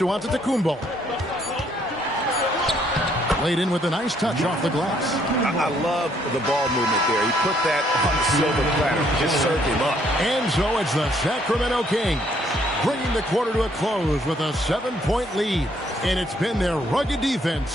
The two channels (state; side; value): normal; both; correlation 0.67